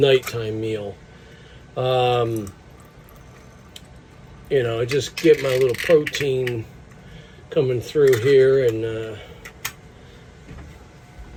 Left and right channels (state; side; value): identical; both; correlation 1.00